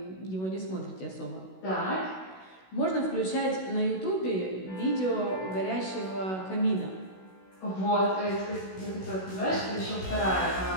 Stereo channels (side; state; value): right; late; 16 ms